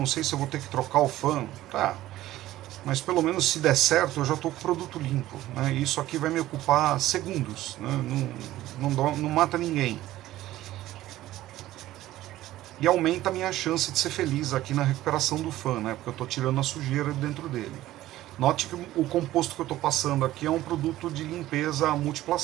sei se eu vou ter que trocar o fã. Tá, mas pelo menos se der certo eu já tô com o produto limpo, né? Isso aqui vai me ocupar segundos, né? Não mata ninguém. E aumenta a minha chance de ser feliz aqui na recuperação do fã, né? Porque eu tô tirando a sujeira dentro dele. Note que o composto que eu estou passando aqui é um produto de limpeza à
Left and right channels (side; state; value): left; quieter; 15.1 dB